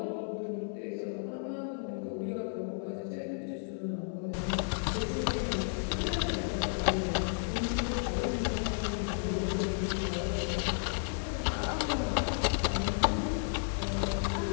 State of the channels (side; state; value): right; silent; digital silence